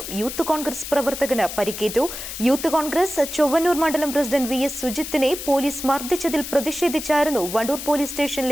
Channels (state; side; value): noise; left; hiss, 8 dB below the sound